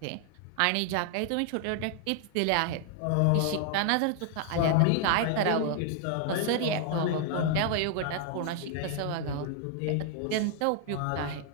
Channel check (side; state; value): both; different; correlation 0.00